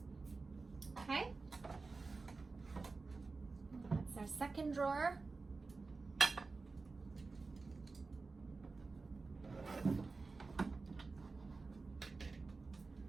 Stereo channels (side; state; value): left; quieter; 4.0 dB